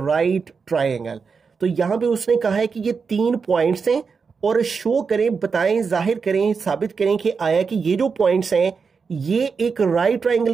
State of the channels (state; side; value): quieter; left; 5.4 dB